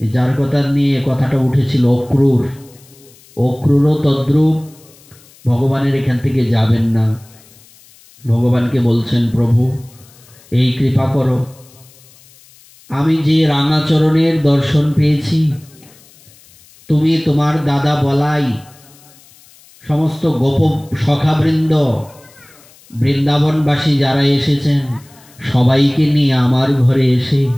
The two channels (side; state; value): left; noise; hiss, 27 dB below the sound